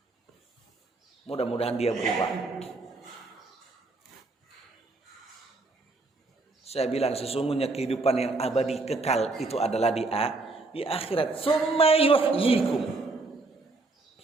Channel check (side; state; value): left; quieter; 3.4 dB